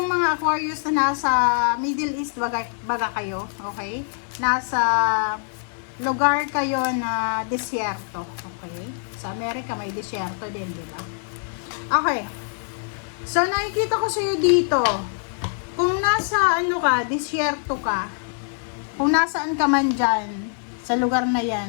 mga Aquarius na nasa Middle East baga kayo, okay? Nasa lugar kayo na disyerto, okay? Sa Amerika may disyerto din, di ba? Okay. So, nakikita ko sa iyo dito, kung nasa disyerto ka, kung nasaan ka man dyan, sa lugar na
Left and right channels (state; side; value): silent; right; 57 dB below the other